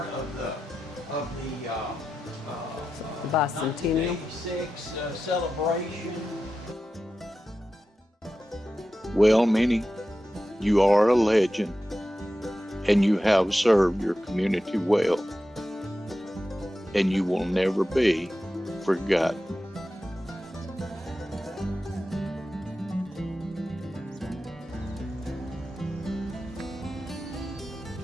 of the bicentennial 1986 celebration. Well, Minnie, you are a legend, and you have served your community well, and you will never be forgotten.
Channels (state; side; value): normal; both; correlation 0.91